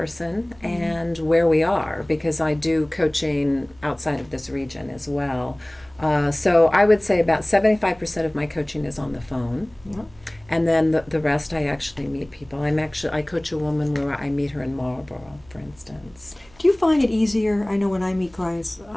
and where we are, because I do coaching outside of this region as well. So I would say about 75% of my coaching is on the phone. Yeah. And then the rest, I actually meet people. I coach a woman where I meet her in Marlborough, for instance. Do you find it easier? I know when I meet clients,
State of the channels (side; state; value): right; noise; hum, 27 dB below the sound